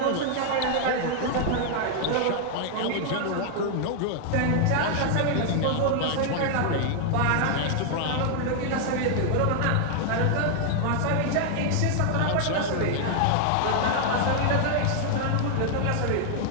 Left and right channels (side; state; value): both; different; correlation 0.00